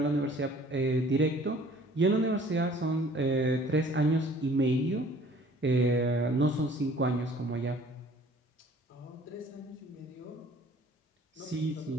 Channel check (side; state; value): both; normal; correlation 0.53